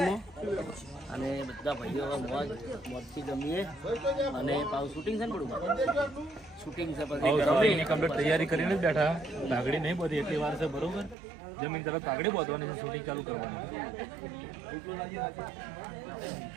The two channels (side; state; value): left; drops out; at 11.2 s